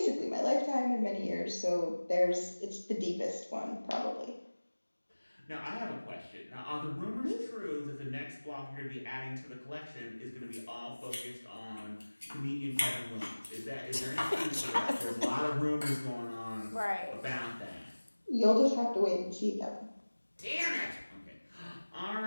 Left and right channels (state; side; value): inverted; both; correlation -1.00